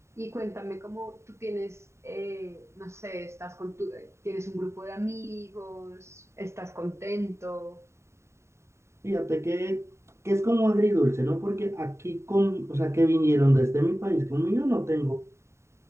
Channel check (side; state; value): left; late; 0.13 ms